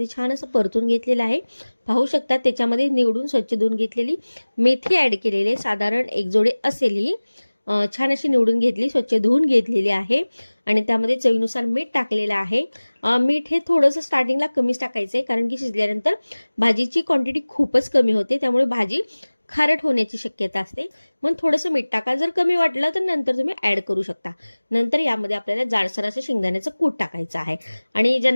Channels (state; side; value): inverted; both; correlation -1.00